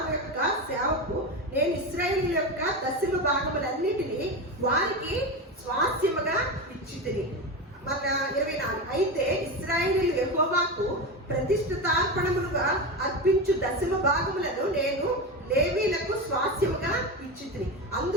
యొక్క సేవకు నేను ఇశ్రాయేలు యొక్క దశమ భాగములన్నిటినీ వారికి స్వాస్థ్యముగా ఇచ్చితిని. మన 24. అయితే ఇశ్రాయేలీయులు యెహోవాకు ప్రతిష్ఠితార్పణములుగా అర్పించు దశమ భాగములను నేను లేవీలకు స్వాస్థ్యముగా ఇచ్చితిని.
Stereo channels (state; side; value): normal; both; correlation 0.20